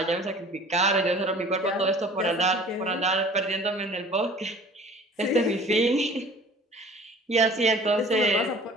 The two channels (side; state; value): both; normal; correlation 0.47